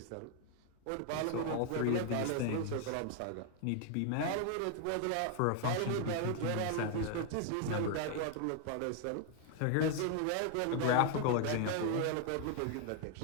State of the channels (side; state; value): both; different; correlation 0.00